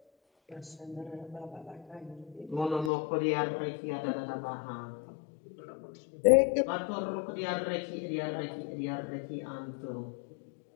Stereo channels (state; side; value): drops out; right; at 2.9 s